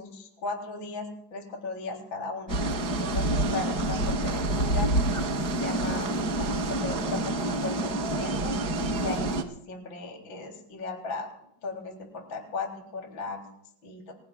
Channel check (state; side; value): late; right; 4.8 ms